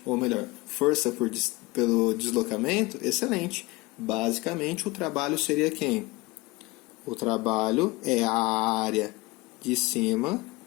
Ou melhor, força pelo deslocamento, excelente. Basicamente o trabalho seria quem? O trabalho é a área de cima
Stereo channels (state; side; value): quieter; right; 22.5 dB